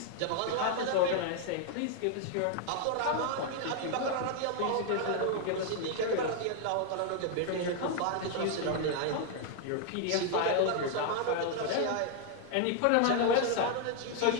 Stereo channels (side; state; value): both; different; correlation 0.00